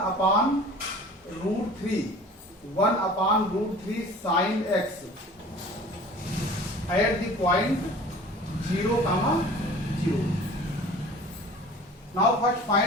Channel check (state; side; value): normal; both; correlation 0.44